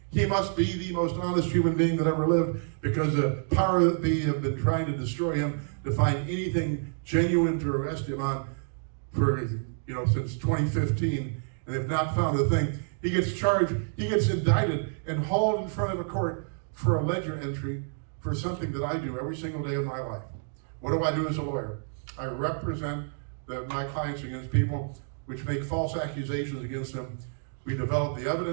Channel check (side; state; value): left; silent; digital silence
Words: He must be the most honest human being that ever lived, because the power that be have been trying to destroy him, to find anything genuine to arrest him on for, since 2015, and they've not found a thing. He gets charged, he gets indicted and hauled in front of a court for a ledger entry for something that I do every single day of my life. What do I do as a lawyer? I represent my clients against people which make false accusations against them. We develop the